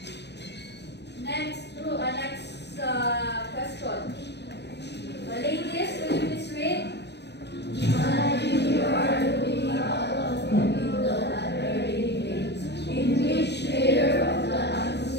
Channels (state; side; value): late; right; 0.50 ms